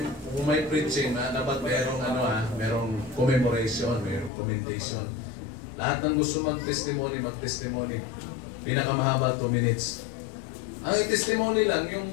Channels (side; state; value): right; drops out; at 4.3 s